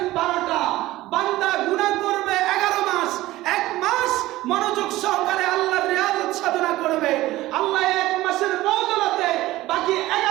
12টা, বান্দা গুনাহ করবে 11 মাস। এক মাস মনোযোগ সহকারে আল্লাহর রিয়াজত সাধনা করবে, আল্লাহ এক মাসের বদৌলতে বাকি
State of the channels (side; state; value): left; quieter; 17.1 dB